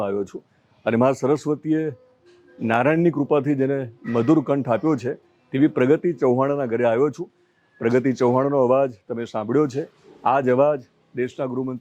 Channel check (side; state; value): both; identical; correlation 1.00